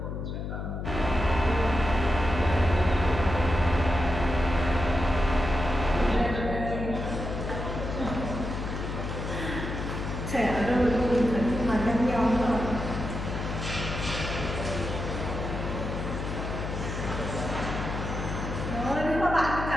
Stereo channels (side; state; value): left; noise; hum, 5 dB below the sound